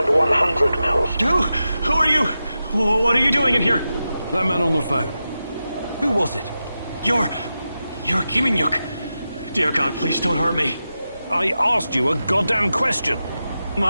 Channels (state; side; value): inverted; both; correlation -0.91